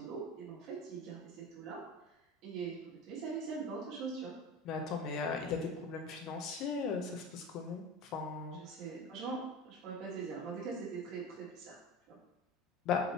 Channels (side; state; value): both; normal; correlation 0.31